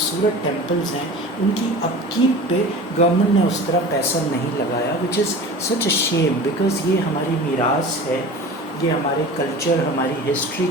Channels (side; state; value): both; normal; correlation 0.37